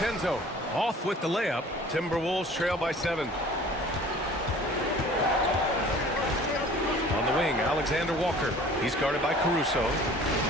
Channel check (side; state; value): both; normal; correlation 0.48